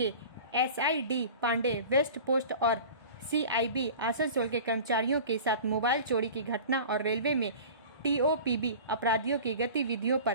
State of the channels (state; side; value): inverted; both; correlation -0.38